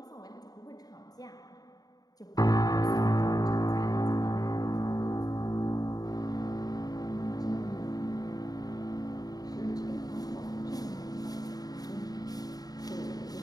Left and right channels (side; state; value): right; late; 0.18 ms